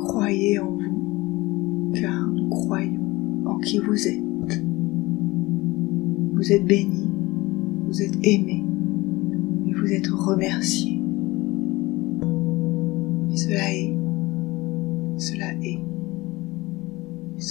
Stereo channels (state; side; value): quieter; right; 20.9 dB